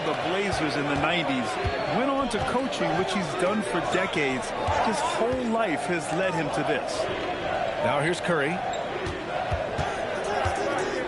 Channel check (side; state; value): both; identical; correlation 1.00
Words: the Blazers in the 90s, went on to coaching, which he's done for decades. His whole life has led him to this. Now here's Curry.